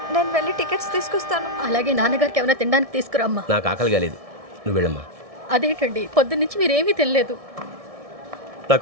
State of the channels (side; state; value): left; late; 1.6 ms